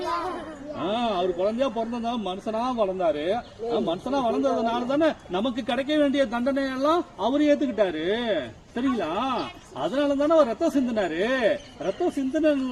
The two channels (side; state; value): both; identical; correlation 1.00